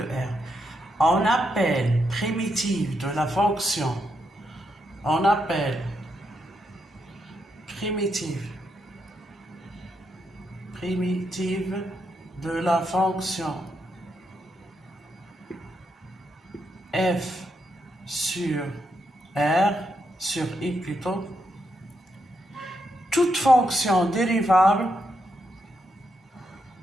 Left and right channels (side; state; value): both; normal; correlation 0.81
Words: On appelle primitive de la fonction, on appelle primitive de la fonction f sur r, sur i plutôt, toute fonction dérivable